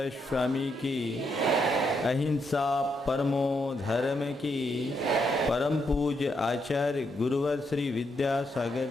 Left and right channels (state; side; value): normal; both; correlation 0.79